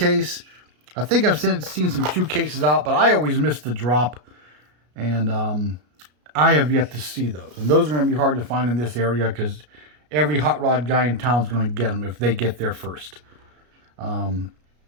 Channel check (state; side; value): late; left; 33 ms